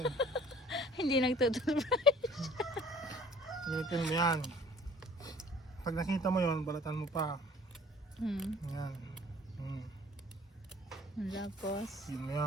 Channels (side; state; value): both; normal; correlation 0.52